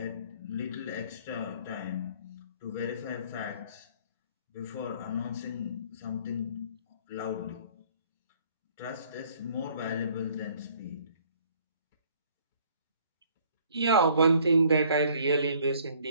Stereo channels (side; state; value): both; inverted; correlation -0.59